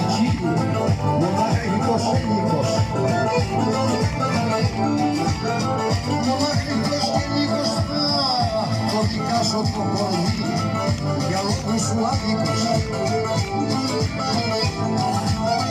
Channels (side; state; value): both; identical; correlation 1.00